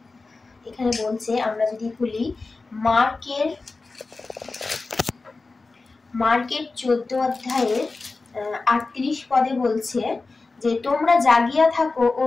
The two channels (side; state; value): right; quieter; 3.7 dB